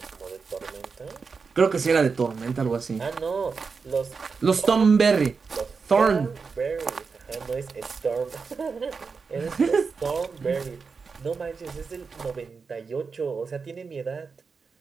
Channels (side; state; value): left; quieter; 5.1 dB